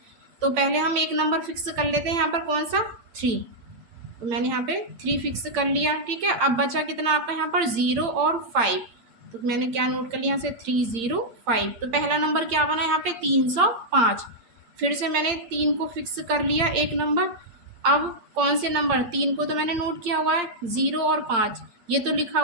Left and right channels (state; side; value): late; left; 8.8 ms